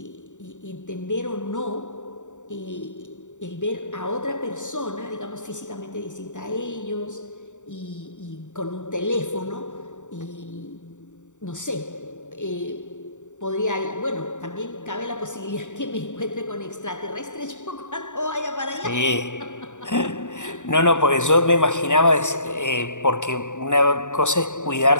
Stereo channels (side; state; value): right; late; 0.85 ms